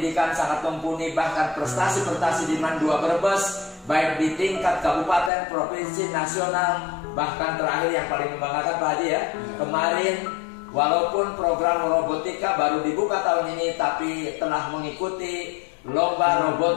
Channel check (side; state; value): right; drops out; at 5.3 s